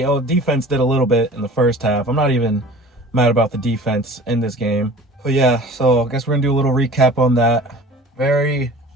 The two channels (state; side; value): normal; both; correlation 0.43